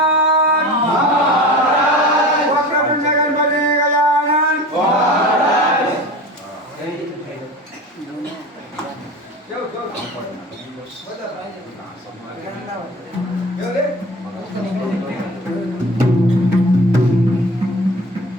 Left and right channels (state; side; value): normal; both; correlation 0.36